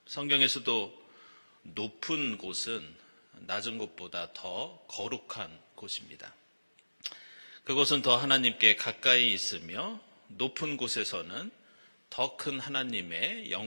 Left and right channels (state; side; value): inverted; both; correlation -1.00